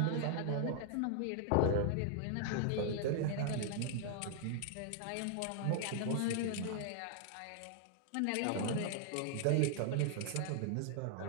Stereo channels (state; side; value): different; both; correlation 0.00